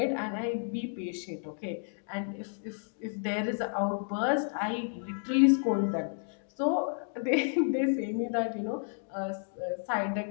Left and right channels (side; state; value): right; silent; 57 dB below the other